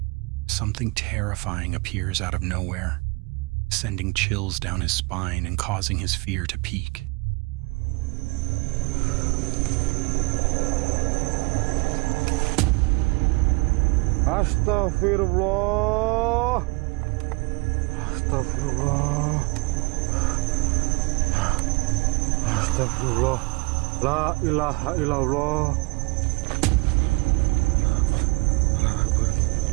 something terrifying appears out of nowhere, sending chills down his spine and causing his fear to peak. Astaghfirullah. Astaghfirullah. Astaghfirullah. La ilaha illallah.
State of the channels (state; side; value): quieter; left; 26.7 dB